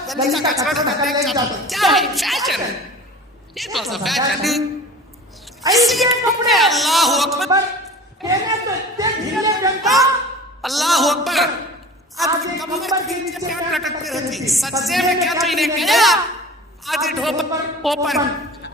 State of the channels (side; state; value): both; normal; correlation 0.39